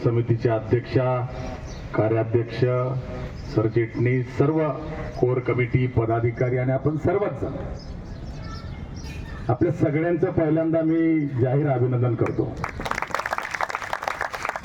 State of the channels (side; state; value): both; identical; correlation 1.00